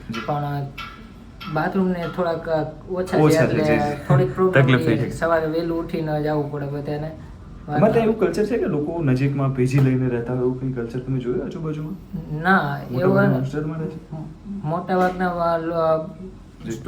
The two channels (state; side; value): identical; both; correlation 1.00